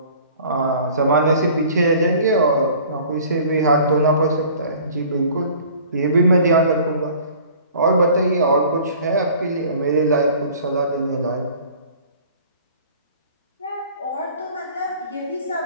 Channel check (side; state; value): both; inverted; correlation -0.49